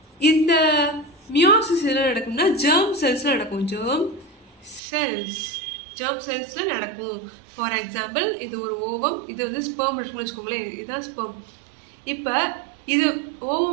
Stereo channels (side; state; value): left; drops out; at 4.8 s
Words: இந்த மியோசிஸ் எதில் நடக்கும்னா ஜெர்ம் செல்ஸில் நடக்கும். ஜெர்ம் செல்ஸில் நடக்கும். ஃபார் எக்ஸாம்பிள் இது ஒரு ஓவம், இது வந்து ஸ்பெர்ம் இருக்குன்னு வச்சுக்கோங்களேன், இதுதான் ஸ்பெர்ம். இப்போ இது